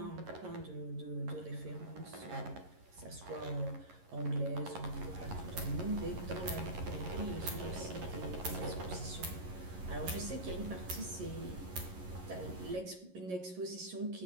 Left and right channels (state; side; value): late; left; 11 ms